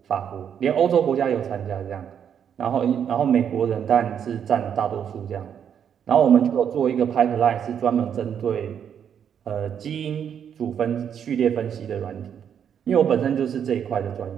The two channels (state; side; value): quieter; left; 8.3 dB